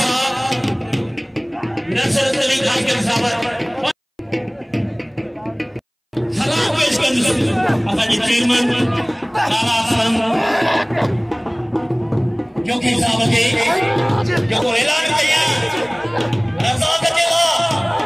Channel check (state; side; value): identical; both; correlation 1.00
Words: नसरत अली खास कर साहब सलाम पेश कर असांजे चेयरमैन लाला असलम जोगी साहब के जो ऐलान कया रज़ाक जेला